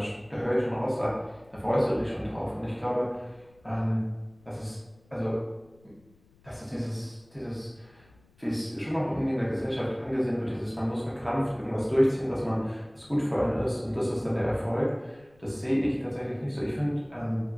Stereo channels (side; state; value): left; noise; rumble, 30 dB below the sound